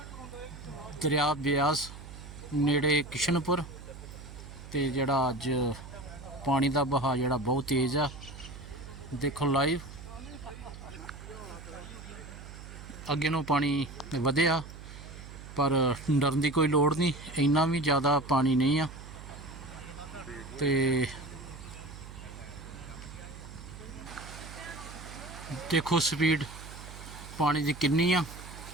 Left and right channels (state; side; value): noise; right; hum, 14 dB below the sound